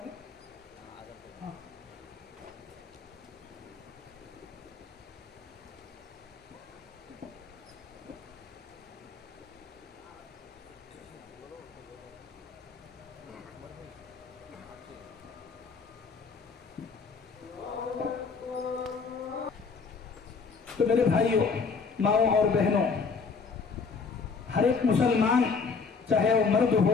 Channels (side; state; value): right; quieter; 5.0 dB